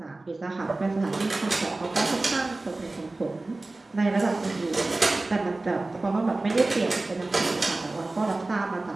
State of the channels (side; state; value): left; quieter; 3.1 dB